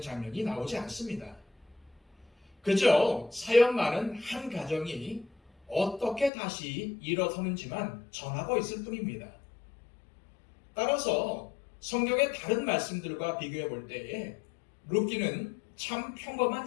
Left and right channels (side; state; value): right; drops out; at 6.3 s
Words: 장면이 나오지 않습니다. 그저 사연 많은 한 가정이 어떻게 다시 일어서는지만 전하고 있을 뿐입니다. 따라서 성경의 다른 말씀들과 비교해 볼 때에 룻기는 참